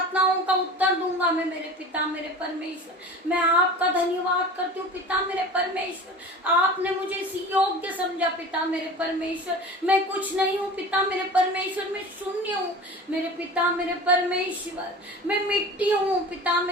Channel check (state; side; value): normal; both; correlation 0.37